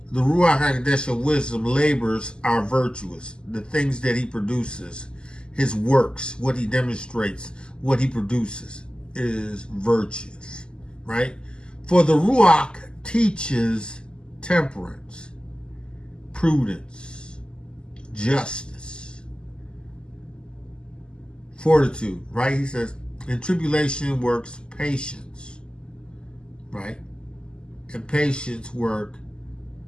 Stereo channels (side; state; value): right; late; 0.048 ms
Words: the Ruach HaKodesh of wisdom labors are virtuous. The things that he produces, his works, what he demonstrates, what he produces is virtuous. Right? For the Ruach teaches temperance, prudence, justice, fortitude, right? He says, in tribulation works patience, right? And patience work